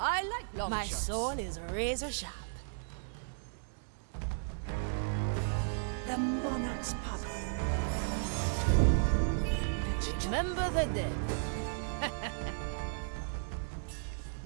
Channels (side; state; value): left; silent; digital silence